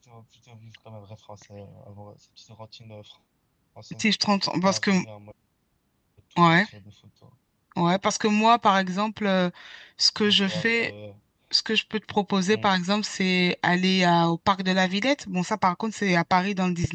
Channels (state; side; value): identical; both; correlation 1.00